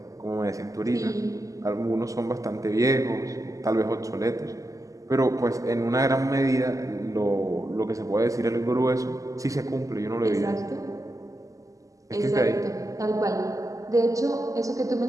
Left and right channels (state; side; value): late; left; 0.16 ms